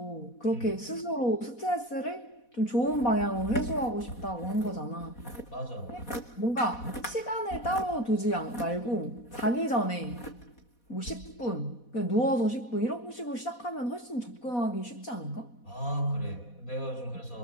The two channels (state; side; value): late; right; 4.1 ms